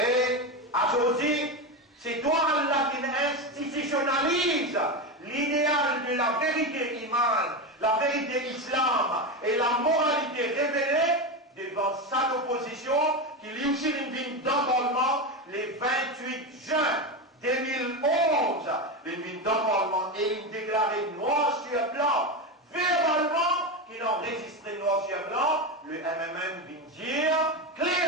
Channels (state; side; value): normal; both; correlation 0.16